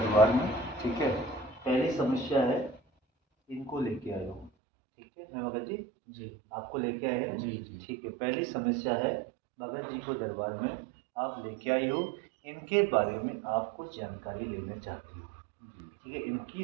में, ठीक है? पहली समस्या है इनको लेके आए हो, ठीक है भगत जी? जी आपको लेके आए हैं? जी जी। ठीक है, पहली समस्या है भगत जी को दरबार में आप लेके आई हो, इनके बारे में आप कुछ जानकारी लेना चाहती हो, ठीक है? इनकी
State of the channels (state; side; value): drops out; left; at 4.5 s